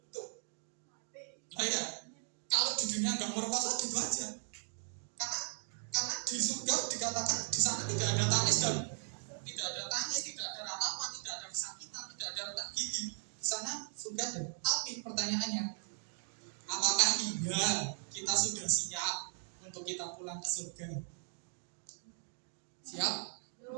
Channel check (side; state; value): left; silent; 53 dB below the other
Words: Tuh, nah ya, kalau di dunia nggak merkosa gitu aja, karena di surga dikatakan di sana tidak ada tangis dan tidak ada ratapan, tidak ada kesakitan, tidak ada retak gigi. Di sana surga ada. Tapi pertanyaannya, apakah iya kita sudah siap untuk kita pulang ke surga? Siap?